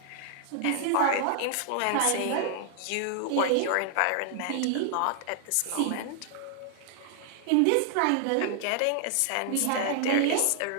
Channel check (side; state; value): both; different; correlation 0.00